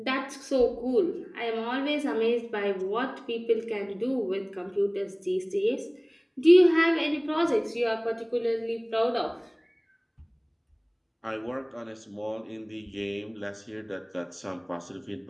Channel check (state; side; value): identical; both; correlation 1.00